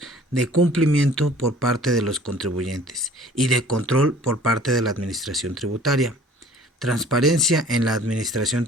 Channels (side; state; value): both; normal; correlation 0.50